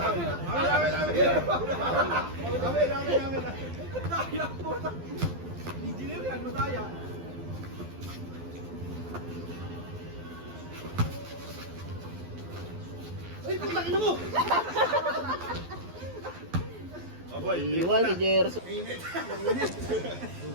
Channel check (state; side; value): late; left; 12 ms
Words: Daya po. Engineer yan, madaya. Ay, putang ina mo! Iwan si Gerson.